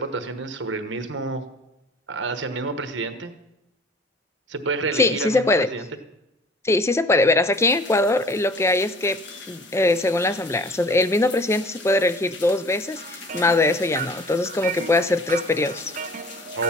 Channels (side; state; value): both; normal; correlation 0.48